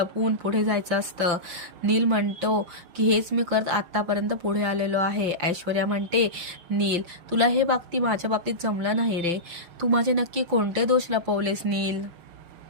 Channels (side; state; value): left; late; 5.8 ms